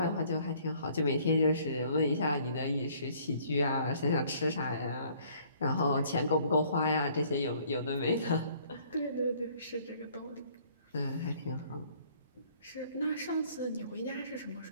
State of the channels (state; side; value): inverted; both; correlation -0.59